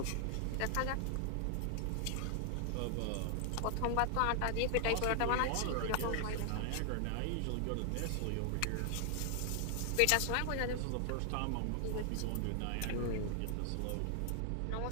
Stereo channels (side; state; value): both; different; correlation 0.00